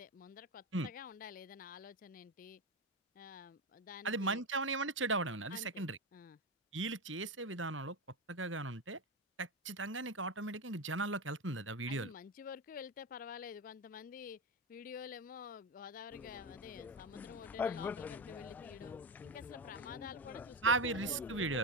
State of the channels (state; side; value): normal; both; correlation 0.15